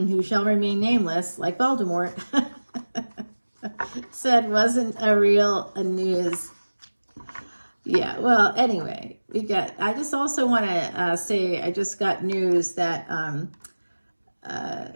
shall remain nameless, like Voldemort, said wasn't a real news. Yeah, well, anyway, I just also want to say I just got news that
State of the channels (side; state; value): both; inverted; correlation -1.00